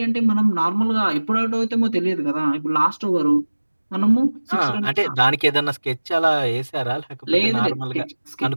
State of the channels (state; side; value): inverted; both; correlation -1.00